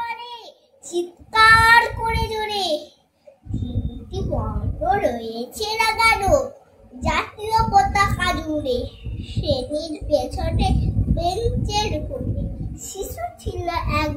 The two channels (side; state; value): both; identical; correlation 1.00